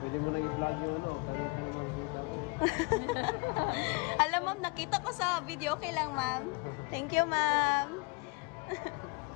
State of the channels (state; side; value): quieter; right; 30.1 dB